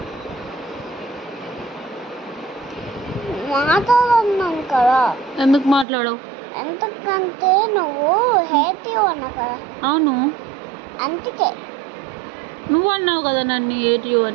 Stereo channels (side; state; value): left; drops out; at 5.9 s